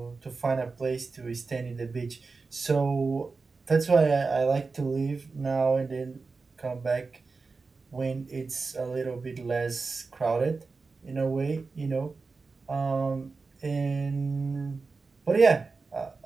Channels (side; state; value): left; quieter; 4.2 dB